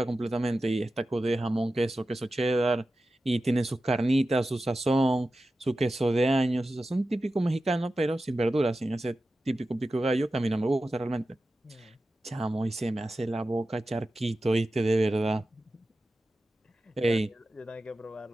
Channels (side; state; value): both; normal; correlation 0.93